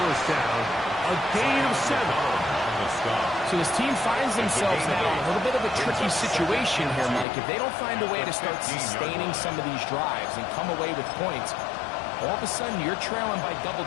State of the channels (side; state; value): right; drops out; at 7.2 s